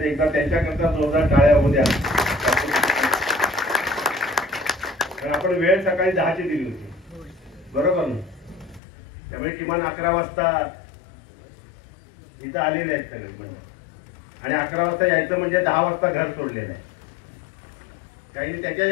एकदा त्यांच्याकरता जोरदार टाळ्या होऊ द्या. कारण आपण वेळ सकाळी 10ची दिली होती, बरोबर ना? त्यामुळे किमान 11 वाजता इथं आलेले आहेत सगळे म्हणजे. आणि 11 वाजता यायचं म्हणजे 10 वाजता घर सोडलेलं आहे. काही त्याच्याही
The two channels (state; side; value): drops out; right; at 8.8 s